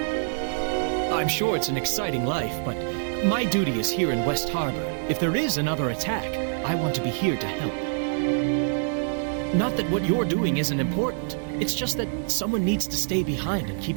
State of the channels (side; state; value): left; silent; digital silence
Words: I'm sure it's an exciting life, but my duty is here in West Harbor. If there is another attack, I want to be here to help. Not that what you're doing isn't important. It's just that someone needs to stay behind and